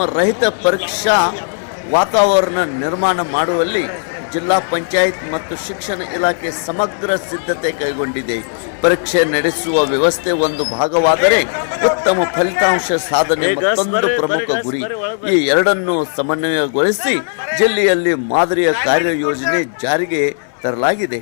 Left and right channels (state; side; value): silent; right; 67 dB below the other